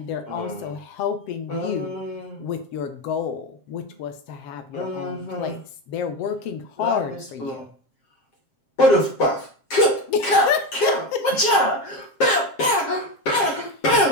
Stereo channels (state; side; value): late; right; 7.5 ms